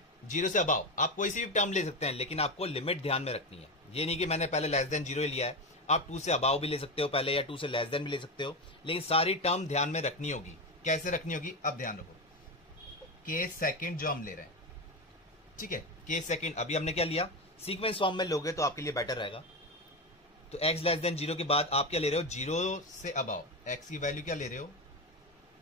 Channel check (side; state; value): both; normal; correlation 0.16